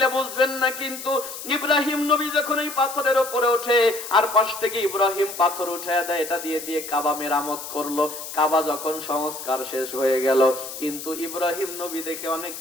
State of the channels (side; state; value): left; noise; hiss, 10 dB below the sound